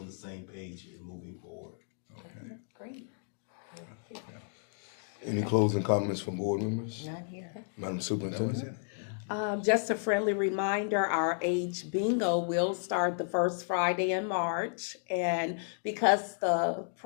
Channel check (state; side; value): silent; right; digital silence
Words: the same page and moving forward. Great. Any closing comments from board members? Not here. Madam Superintendent? Just a friendly reminder, our age bingo will start the first Friday in March. And because the